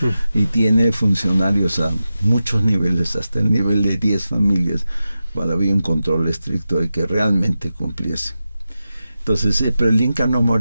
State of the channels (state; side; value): inverted; both; correlation -0.92